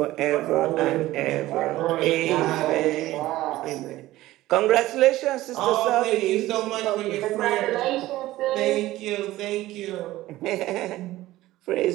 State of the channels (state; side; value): quieter; left; 16.4 dB